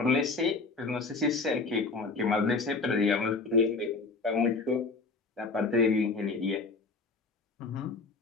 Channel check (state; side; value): quieter; right; 3.9 dB